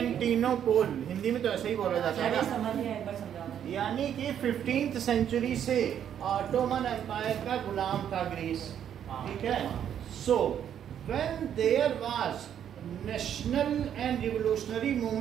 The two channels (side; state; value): left; quieter; 9.4 dB